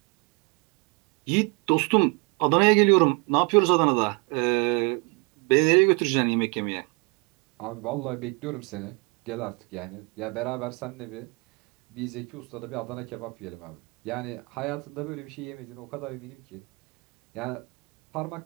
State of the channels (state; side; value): quieter; left; 31.1 dB